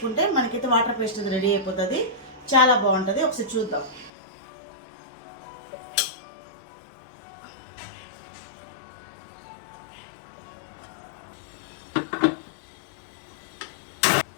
మనకైతే వాటర్ పేస్ట్ రెడీ అయిపోతుంది. చాలా బాగుంటుంది. ఒకసారి చూద్దాం.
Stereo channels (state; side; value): drops out; right; at 4.1 s